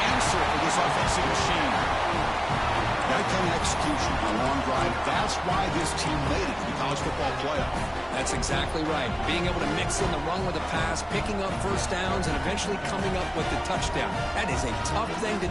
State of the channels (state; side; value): identical; both; correlation 1.00